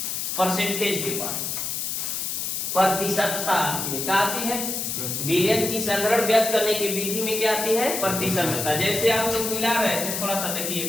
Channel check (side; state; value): left; noise; hiss, 2 dB below the sound